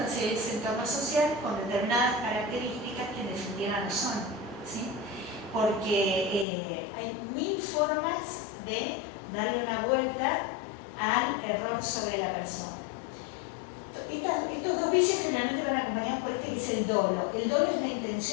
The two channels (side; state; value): right; drops out; at 6.5 s